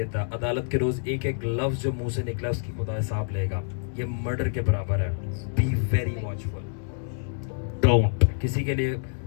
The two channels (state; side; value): silent; right; digital silence